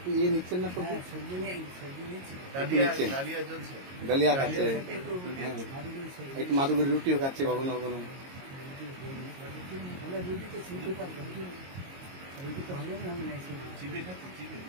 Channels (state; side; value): late; left; 22 ms